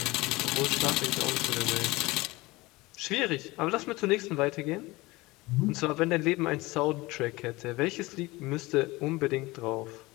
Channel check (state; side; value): quieter; right; 21.4 dB